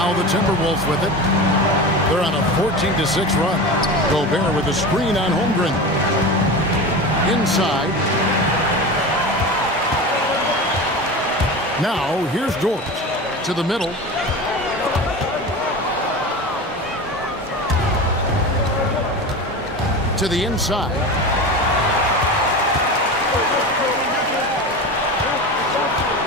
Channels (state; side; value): normal; both; correlation 0.28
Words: the Timberwolves with it. They're on a 14-6 run. Gobert with a screen on Holmgren. Inside. Now here's Dort to the middle. To the inside.